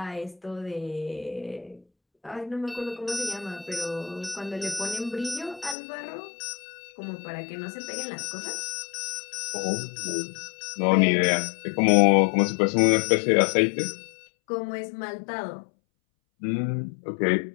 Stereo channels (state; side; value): drops out; right; at 5.8 s